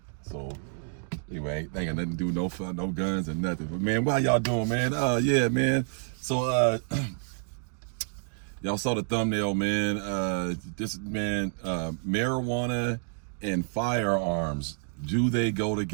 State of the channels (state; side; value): silent; left; 59 dB below the other